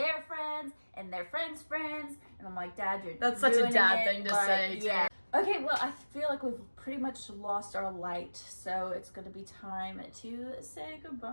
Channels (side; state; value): both; inverted; correlation -1.00